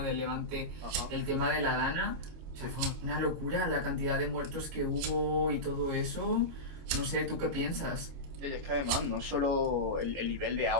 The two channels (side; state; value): left; late; 25 ms